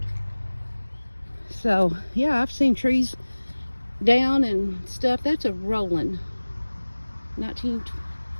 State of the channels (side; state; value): both; inverted; correlation -1.00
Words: So yeah, I've seen trees down and stuff. That's a rolling